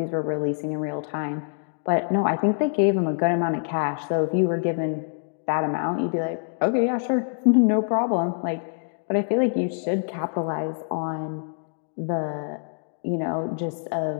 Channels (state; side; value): silent; right; digital silence